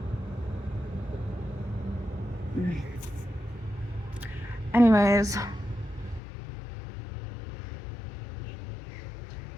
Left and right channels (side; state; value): right; drops out; at 6.2 s